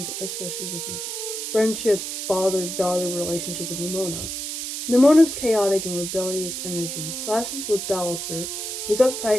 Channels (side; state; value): right; noise; hiss, 5 dB below the sound